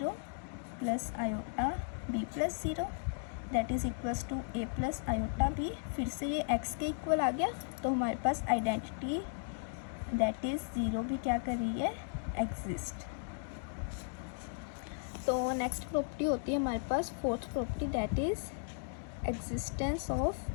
plus iota B plus zero that is equals to A plus iota B. फिर से ये एक्स के इक्वल आ गया, तो हमारे पास आइडेंटिटी दैट इज़ ज़ीरो भी क्या कर रही है, एग्जिस्ट। तो नेक्स्ट प्रॉपर्टी होती है हमारे पास fourth property, that is existence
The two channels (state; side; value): silent; right; digital silence